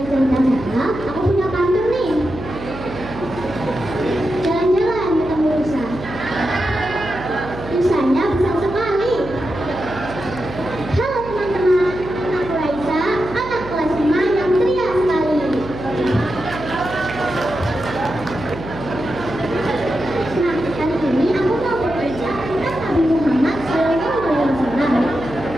cerita saya, aku punya pantun nih. Jalan-jalan ketemu rusa. Rusanya besar sekali. Halo teman-teman, aku Raisa, anak kelas 5 yang ceria sekali. Nah, kali ini aku mau bercerita tentang Nabi Muhammad SAW.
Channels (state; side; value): noise; right; hum, 12 dB below the sound